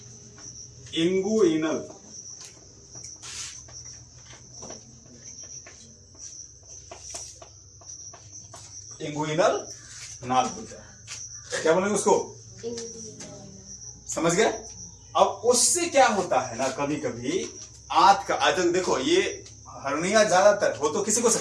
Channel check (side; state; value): both; identical; correlation 1.00